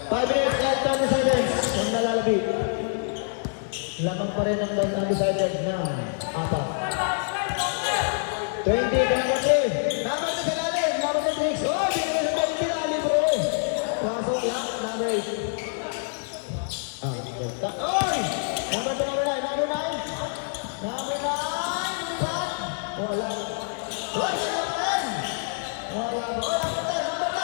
5 minutes left on the seconds. Ang nalalabit. Lamang pa rin ang undecided na 4. 20, number 3. Number 2 sa lalim. Number 6. Oh, hindi na sa 20 lalim bro. Pasok lang. Number 8. Oy! Number 2, number 9. Number 9. Number 9. Wala. Wala.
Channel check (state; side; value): silent; right; digital silence